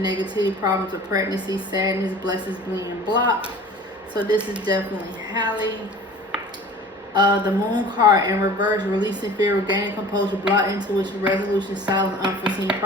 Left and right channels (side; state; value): both; normal; correlation 0.43